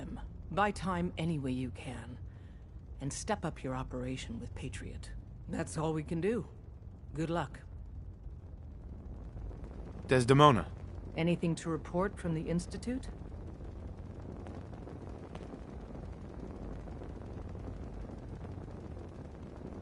Buy time any way you can. And step up your operation with Patriot. That's all we can do. Good luck. Desdemona. Anything to report from the Institute?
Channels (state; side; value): identical; both; correlation 1.00